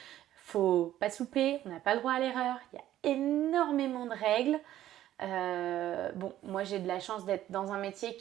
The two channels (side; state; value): left; quieter; 12.9 dB